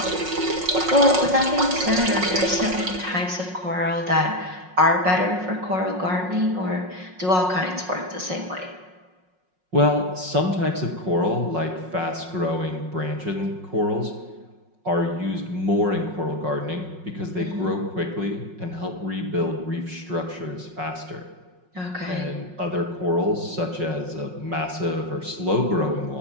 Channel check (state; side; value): late; left; 5.5 ms